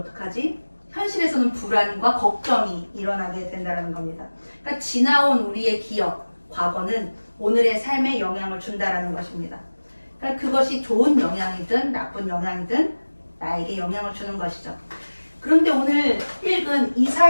어떡하지? 현실에서는 불안과 걱정이 일어나게 된다는 겁니다. 그러니까 지나온 우리의 기억, 과거는 오늘의 삶에 영향을 준다는 것입니다. 그러니까 그것이 좋은 영향이든 나쁜 영향이든 나에게 영향을 주는 것이죠. 그런데 오늘 읽은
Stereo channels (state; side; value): inverted; both; correlation -1.00